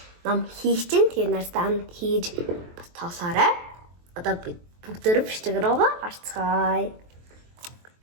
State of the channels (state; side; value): late; left; 23 ms